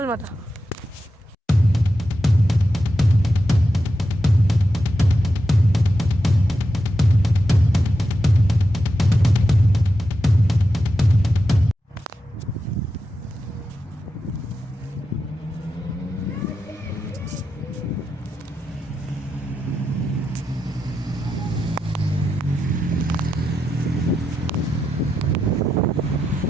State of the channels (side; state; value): both; normal; correlation 0.87